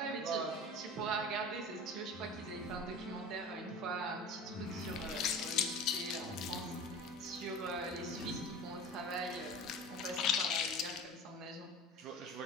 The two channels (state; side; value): normal; both; correlation 0.36